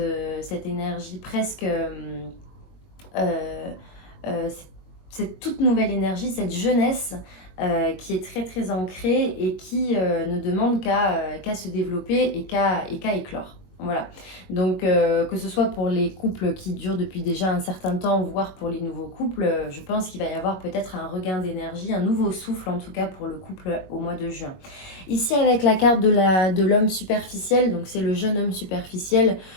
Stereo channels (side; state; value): right; late; 21 ms